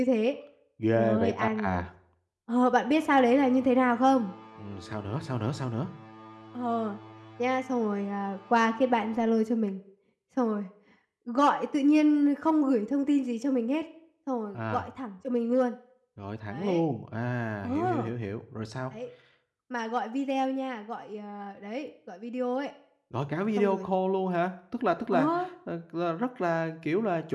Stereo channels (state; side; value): identical; both; correlation 1.00